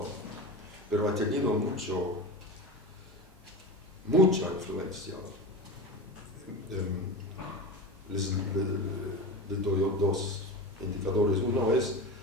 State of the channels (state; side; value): normal; both; correlation 0.26